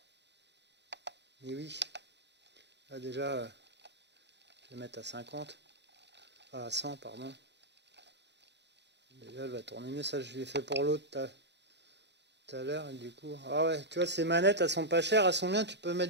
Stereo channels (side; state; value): left; late; 0.50 ms